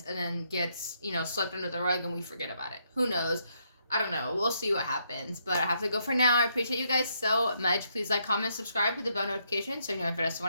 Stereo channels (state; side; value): inverted; both; correlation -0.75